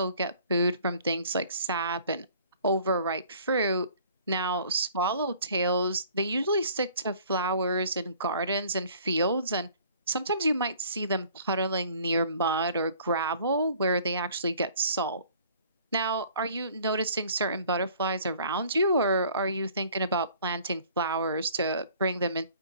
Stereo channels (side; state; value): both; inverted; correlation -0.53